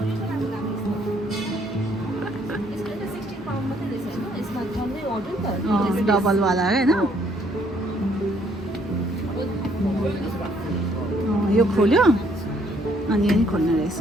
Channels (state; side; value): normal; both; correlation 0.66